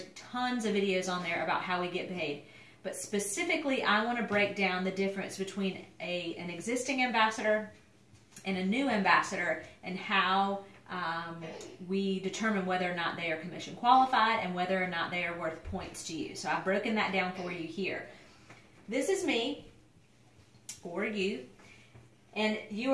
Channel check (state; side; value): identical; both; correlation 1.00